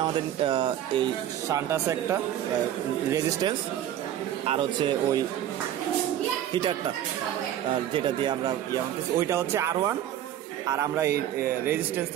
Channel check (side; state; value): left; quieter; 11.4 dB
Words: আমাদের এই শান্ট আছে একটা রেজিস্ট্যান্স, আর হচ্ছে ওই হিটারটা যেটা দিয়ে আমরা ওইটা হচ্ছে R1, আর আমরা এই রেজিস্ট্যান্স